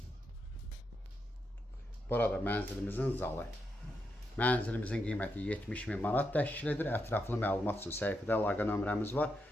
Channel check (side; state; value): both; normal; correlation 0.83